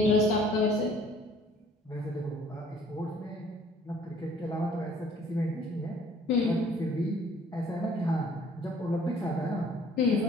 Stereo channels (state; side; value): normal; both; correlation 0.57